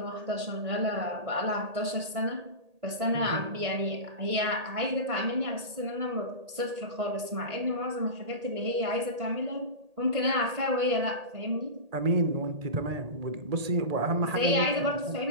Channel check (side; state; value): left; late; 1.8 ms